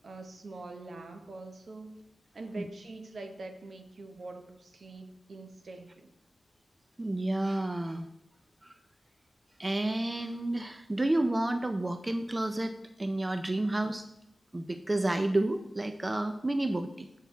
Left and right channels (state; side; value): normal; both; correlation 0.98